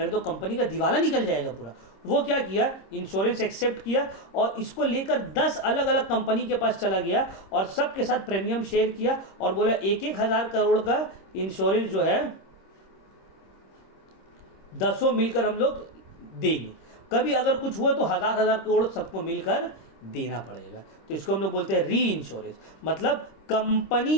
तो कंपनी का दिवाला निकल जाएगा पूरा। वो क्या किया, इंश्योरेंस एक्सेप्ट किया और इसको लेकर 10 अलग अलग कंपनी के पास चला गया और सबके साथ प्रीमियम शेयर किया और बोला 1,000 करोड़ का इंश्योरेंस जो है 10 मिलकर हम लोग देंगे, कभी अगर कुछ हुआ तो 1,000 करोड़ सबको मिलकर देना पड़ेगा। तो इसको हम लोग बोलते हैं री इंश्योरेंस। मतलब कंपनी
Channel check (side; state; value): right; late; 26 ms